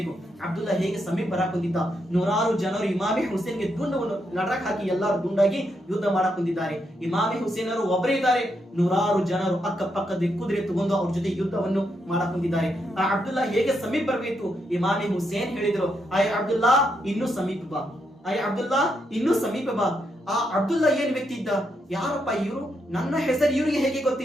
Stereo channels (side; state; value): both; normal; correlation 0.80